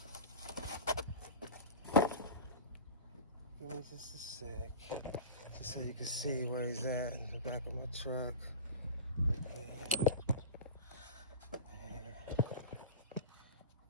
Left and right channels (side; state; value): both; inverted; correlation -0.32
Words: Give me just a sec, just so you can see where he's at in the back of my truck.